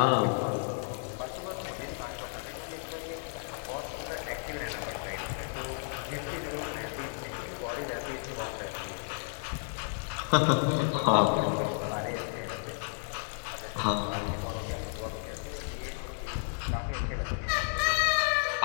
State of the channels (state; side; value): silent; right; digital silence